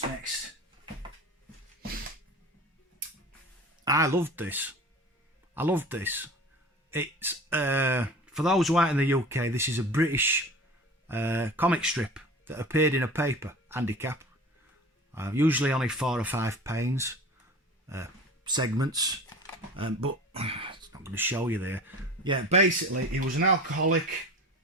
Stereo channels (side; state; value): both; normal; correlation 0.38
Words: next? I loved this. It's, for those who aren't in the UK, this is a British comic strip that appeared in a paper, Handicap. Usually only 4 or 5 panes, segments, but it's not going to show you there. Yeah, basically, he was an alcoholic